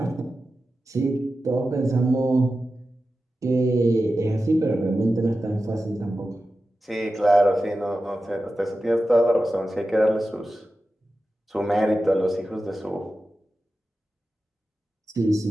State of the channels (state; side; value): normal; both; correlation 0.93